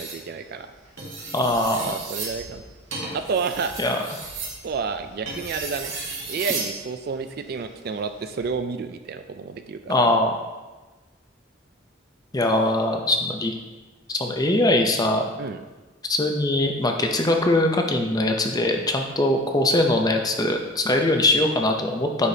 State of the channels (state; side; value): normal; both; correlation 0.36